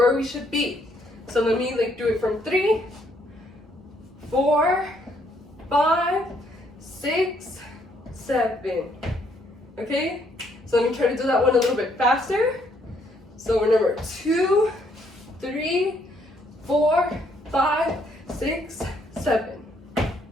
we should be. So let me like do it from 3, 4, 5, 6, 7. Okay, so let me try to do that one a little bit faster. So remember, 2, 3, 4, 5, 6, 7.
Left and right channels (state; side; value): normal; both; correlation 0.69